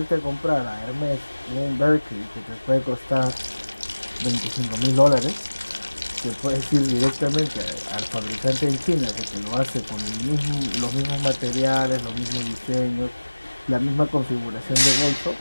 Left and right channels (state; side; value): inverted; both; correlation -1.00